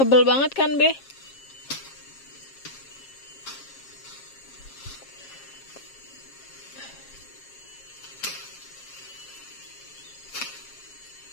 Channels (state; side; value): late; right; 7.4 ms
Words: banget kan, Be?